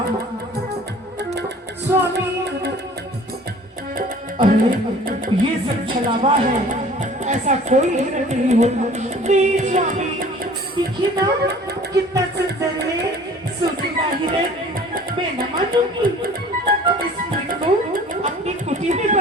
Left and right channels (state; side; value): normal; both; correlation 0.48